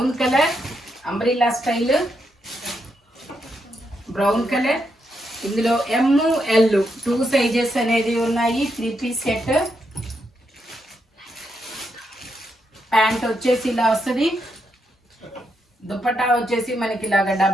colour umbrella style, brown colour. ఇందులో ఎమ్ ఎల్ 2 సైజెస్ అనేది ఉన్నాయి. 3 పీస్ సెట్. ప్యాంట్ వచ్చేసి ఇలా వస్తుంది. దుపట్టా వచ్చేసి మనకి ఇలాగా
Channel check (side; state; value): both; normal; correlation 0.81